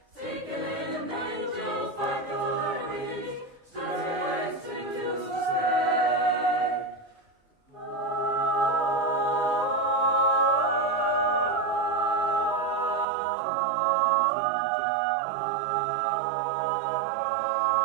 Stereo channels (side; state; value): left; drops out; at 13.1 s